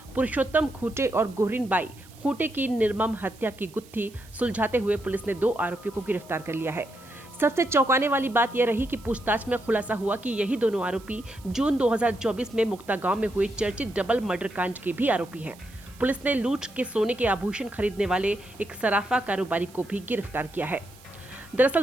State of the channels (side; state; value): right; noise; hiss, 24 dB below the sound